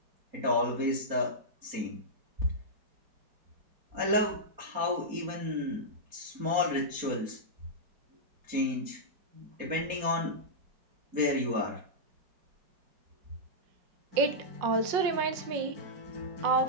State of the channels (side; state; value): left; late; 4.3 ms